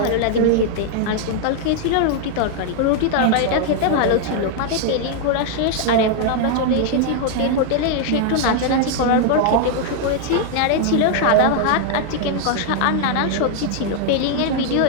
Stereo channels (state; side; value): different; both; correlation 0.00